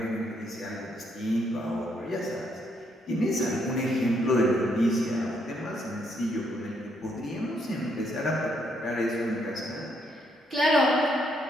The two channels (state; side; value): normal; both; correlation 0.73